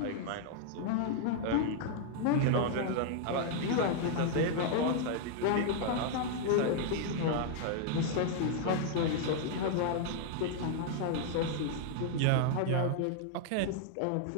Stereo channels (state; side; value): different; both; correlation 0.00